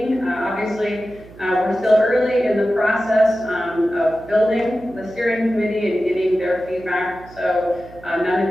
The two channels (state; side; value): noise; right; hum, 20 dB below the sound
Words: Obviously, we're still early in the process of building the steering committee and getting their feedback. So none of